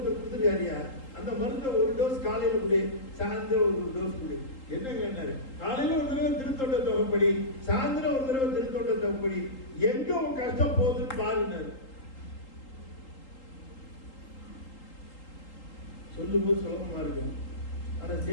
கொடுத்துருக்காரியா, அந்த மருந்தை 1 டோஸ் காலையில கொடு, சாயந்தரம் 1 டோஸ் கொடு. என்ன கேட்டாரு, காலையில 1 தடவை திருத்தொண்ட தொகைப்படி, சாயந்தரம் 1 தடவை திருத்தொண்ட தொகைப்படி, எங்க உன் கஷ்டம் போகுதுன்னு பாருன்னாரு. சொல்லும்போது சுலபமா இருக்கும், ஆனா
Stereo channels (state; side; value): late; right; 3.8 ms